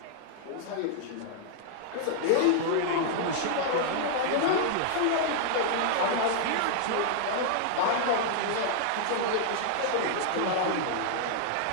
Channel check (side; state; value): both; different; correlation -0.01